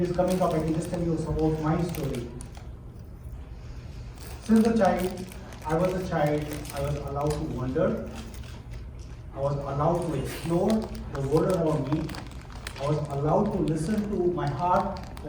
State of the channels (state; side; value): identical; both; correlation 1.00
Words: is coming up, I can just tell you some about my story. Since I was a child, I was allowed to wonder. I was allowed to explore the world around me. I was allowed to listen to my heart,